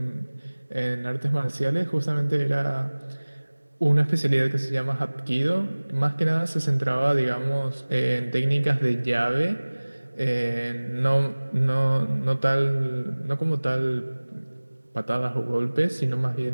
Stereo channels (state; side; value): inverted; both; correlation -1.00